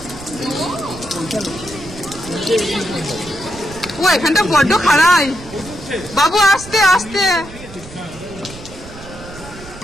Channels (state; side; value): noise; right; rumble, 16 dB below the sound